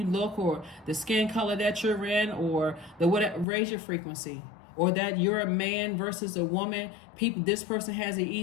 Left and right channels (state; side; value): drops out; right; at 3.5 s